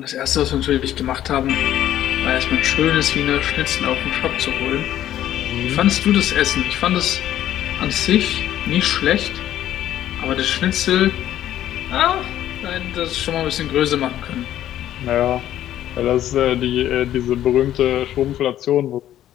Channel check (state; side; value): quieter; right; 12.2 dB